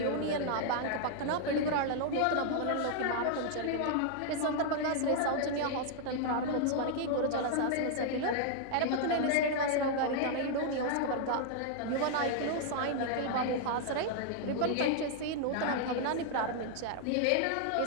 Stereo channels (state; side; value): different; both; correlation -0.01